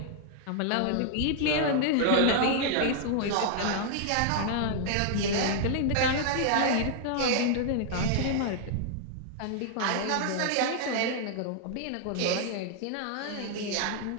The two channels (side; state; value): both; different; correlation 0.00